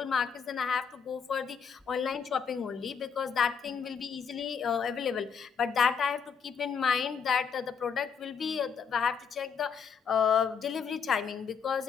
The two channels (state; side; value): quieter; right; 6.5 dB